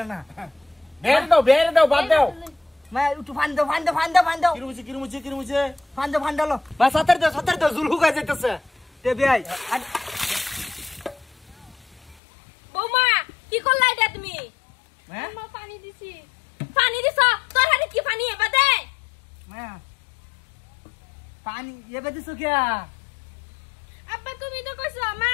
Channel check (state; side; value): drops out; right; at 12.2 s